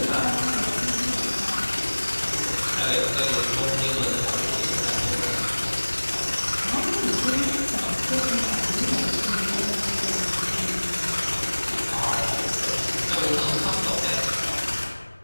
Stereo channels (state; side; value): inverted; both; correlation -1.00